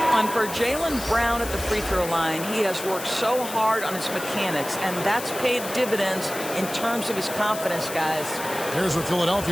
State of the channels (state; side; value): noise; left; hiss, 10 dB below the sound